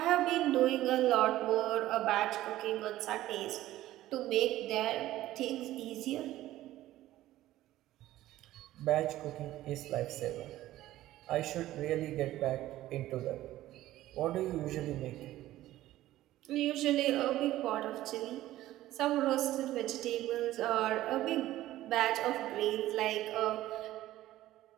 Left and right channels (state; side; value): quieter; left; 14.9 dB